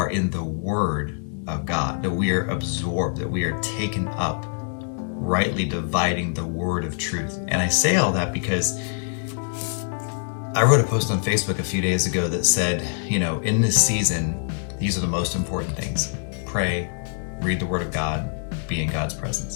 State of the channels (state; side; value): silent; right; digital silence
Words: in the Word of God, that we are absorbed, that we are taken up, rightly dividing the word of truth. And I say all that because I wrote a post on Facebook a few days ago that said, in this season, these are the most important things. Pray, read the Word of God, be in God's